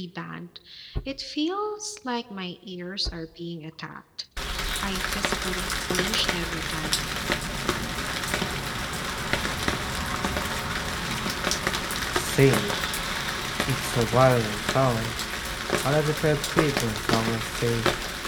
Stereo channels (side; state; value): both; identical; correlation 1.00